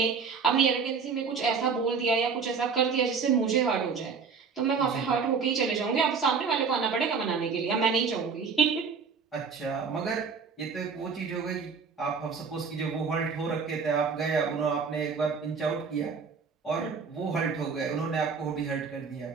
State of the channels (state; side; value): quieter; left; 5.6 dB